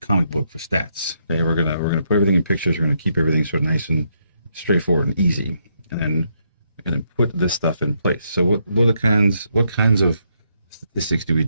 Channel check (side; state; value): both; inverted; correlation -0.76